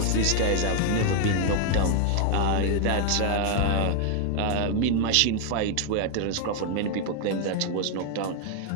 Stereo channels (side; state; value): both; different; correlation 0.00